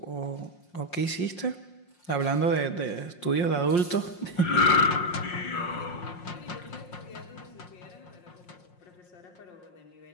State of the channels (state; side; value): late; right; 5.6 ms